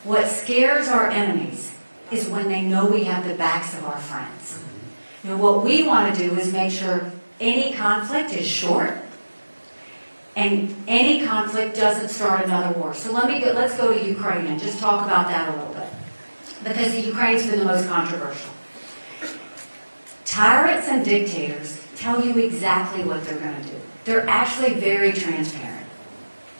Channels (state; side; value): inverted; both; correlation -1.00